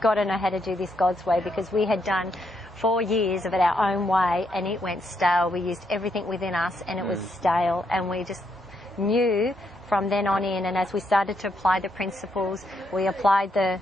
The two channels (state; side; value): normal; both; correlation 0.77